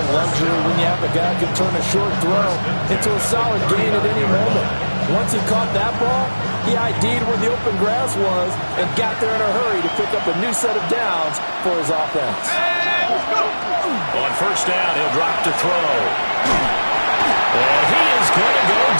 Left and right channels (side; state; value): both; inverted; correlation -1.00